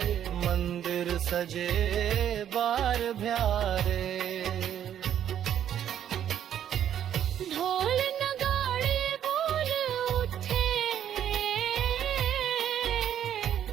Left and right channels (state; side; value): quieter; left; 10.1 dB